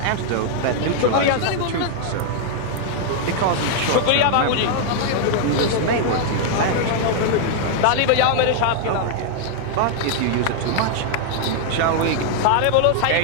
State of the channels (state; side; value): different; both; correlation 0.00